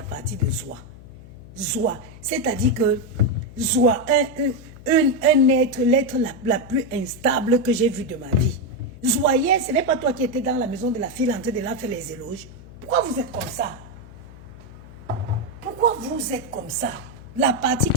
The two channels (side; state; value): left; noise; hum, 18 dB below the sound